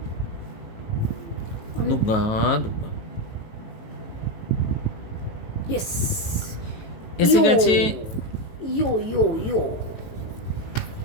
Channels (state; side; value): late; right; 19 ms